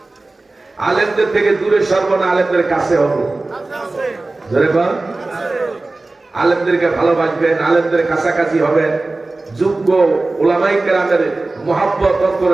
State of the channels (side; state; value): left; quieter; 3.2 dB